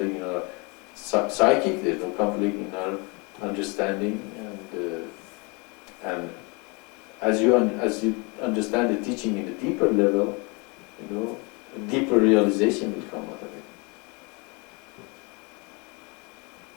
in our psychic. There's no conflict in our understanding. And as you understand the teaching in a deeper level, a deeper realization will come out of it.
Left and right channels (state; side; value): quieter; right; 30.2 dB